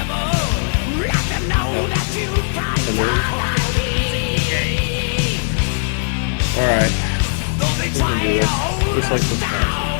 Alright. We can do this. Just like this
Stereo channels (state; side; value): silent; right; digital silence